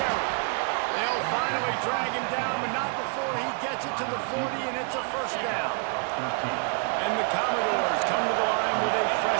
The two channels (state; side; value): quieter; left; 38.8 dB